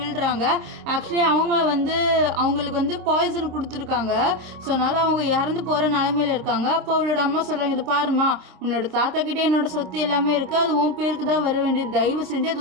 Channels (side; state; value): left; late; 26 ms